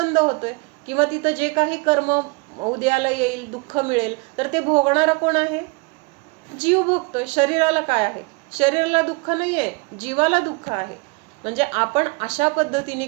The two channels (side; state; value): left; quieter; 29.0 dB